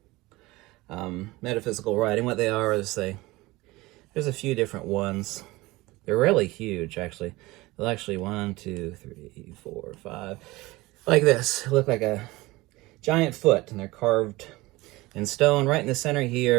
writing. What they are is there's a few different ones. They're really huge, actually. They'll actually 1, 2, 3, 4, 5, like this. They look like a giant foot, and they're carved in stone. Right in the center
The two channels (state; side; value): quieter; left; 20.6 dB